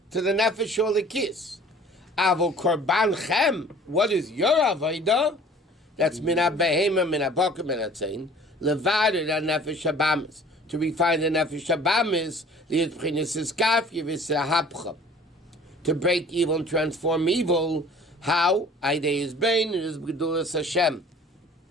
to the nefesh shel Elikis. Avo korban chem, what is your Aveda? That's mina behema, mina boker, mina tzayin. Levader the nefesh shabamis, to refine the nefesh shabamis, li'et b'chinas iskaf yivisahapcha, to break evil and transform evil. How? Aidei is bain, it is b'gedulas Hashem.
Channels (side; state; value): both; normal; correlation 0.49